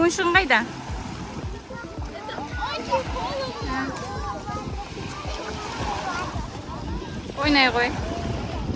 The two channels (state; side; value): identical; both; correlation 1.00